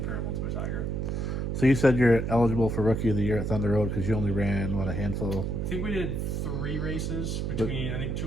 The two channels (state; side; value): noise; right; hum, 1 dB below the sound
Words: to a Tiger. So you said you're eligible for Rookie of the Year at Thunder Road because you only ran, what, a handful? I think we did 3 races between, I think